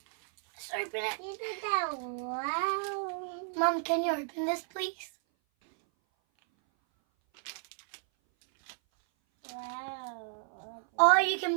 Let's open it. Isn't that wow? Mom, can you open this, please? Wow. Oh, you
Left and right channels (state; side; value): silent; left; 56 dB below the other